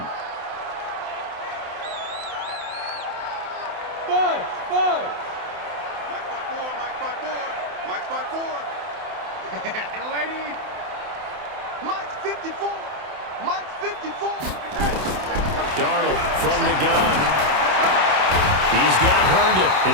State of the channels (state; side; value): late; left; 27 ms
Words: 5. Mike spot 4. Mike spot 4. Mike spot 4. Lady. Mike's 54. Mike's 54. Darnold from the gun. He's got Herndon,